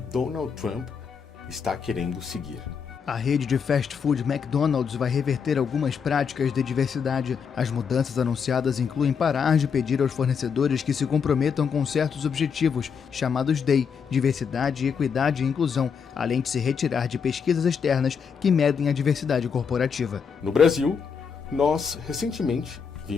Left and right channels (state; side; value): quieter; right; 6.4 dB